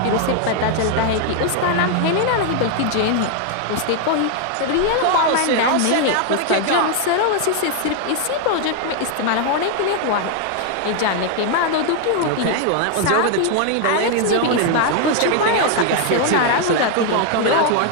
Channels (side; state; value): both; different; correlation 0.00